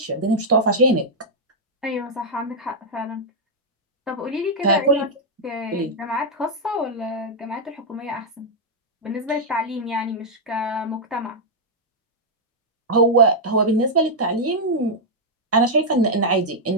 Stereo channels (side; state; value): both; normal; correlation -0.05